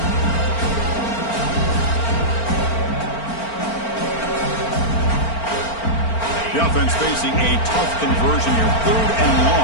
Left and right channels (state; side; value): late; right; 4.4 ms